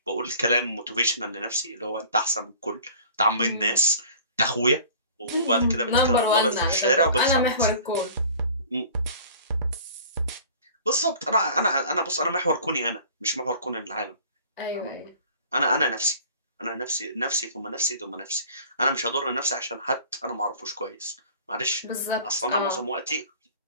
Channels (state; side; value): inverted; both; correlation -0.47